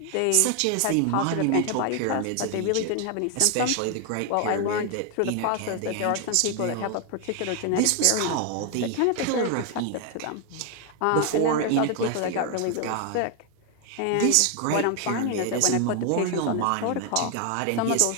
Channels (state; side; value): different; both; correlation 0.01